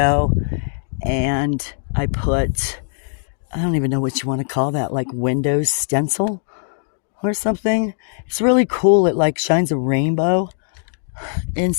And I put, I don't even know what you want to call that, like window stencil or something. It's really cool. It like shines a rainbow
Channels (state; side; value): silent; right; digital silence